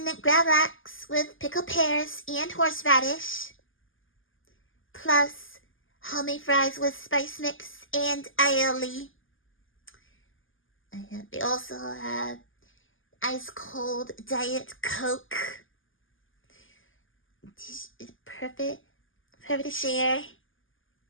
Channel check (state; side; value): late; right; 0.58 ms